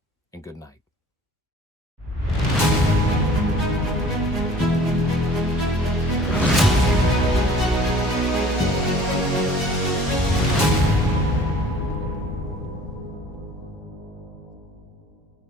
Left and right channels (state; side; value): normal; both; correlation 0.49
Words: and good night.